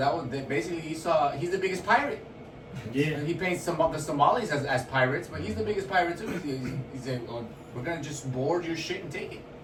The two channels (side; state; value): both; identical; correlation 1.00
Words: basically he's the biggest pirate. Yeah. He paints the Somalis as pirates, but he's the biggest pirate too. He said, "Oh, we're gonna just board your shit and take it."